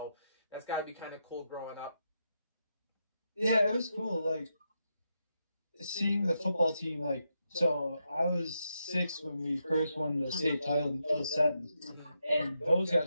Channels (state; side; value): inverted; both; correlation -0.83